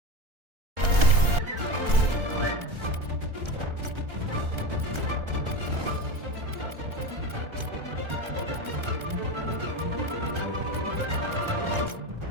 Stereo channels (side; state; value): left; late; 1.4 ms